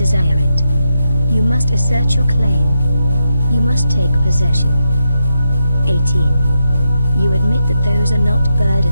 it. You must assert your claim. You must take possession. 18. You admit that those are not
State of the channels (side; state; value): both; inverted; correlation -0.82